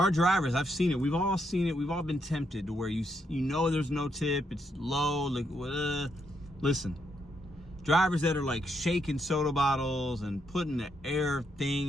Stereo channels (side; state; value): both; normal; correlation 0.78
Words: drivers, I've seen it. We've all seen it. We've all been tempted to where you know there's no tip. It's low. Like, listen, drivers that are like shaking soda bottles and putting the air thing